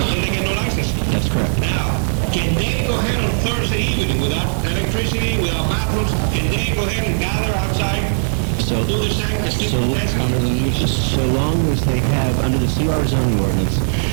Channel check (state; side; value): silent; left; digital silence